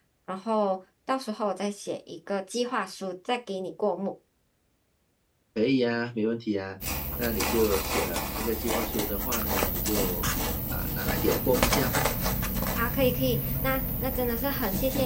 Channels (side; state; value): both; identical; correlation 1.00